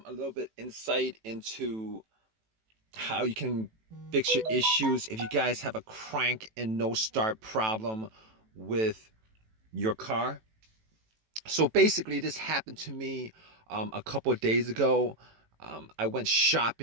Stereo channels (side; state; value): left; late; 18 ms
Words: little bit insight into how you can fix your issues if you guys have a crank and no start problem with your car. So basically, this happened to me a couple of days ago. I went